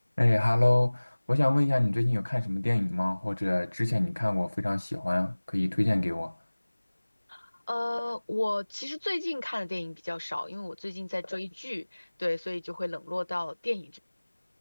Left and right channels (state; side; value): inverted; both; correlation -1.00